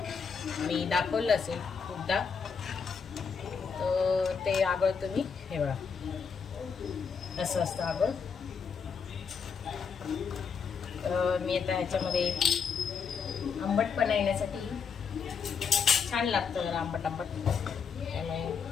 मी दाखवलं असेल खूपदा, तर ते आगळ तुम्ही हे बघा असं असतं आगळ. तर मी आता ह्याच्यामध्ये आंबटपणा येण्यासाठी छान लागतं जरा आंबट आंबट,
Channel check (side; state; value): right; quieter; 6.1 dB